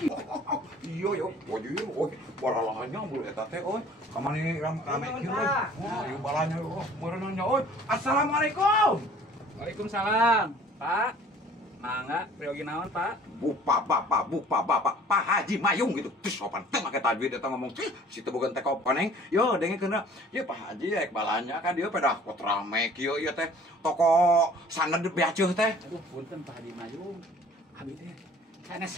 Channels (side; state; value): both; normal; correlation 0.51